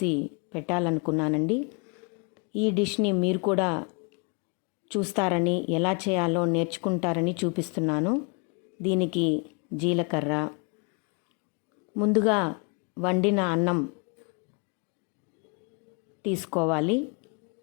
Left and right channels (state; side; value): quieter; right; 34.2 dB